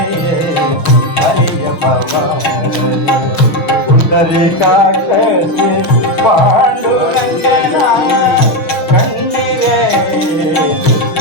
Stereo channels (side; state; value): right; late; 6.0 ms